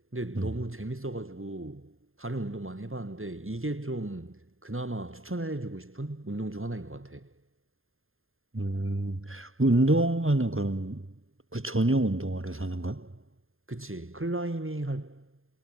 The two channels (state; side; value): late; left; 0.61 ms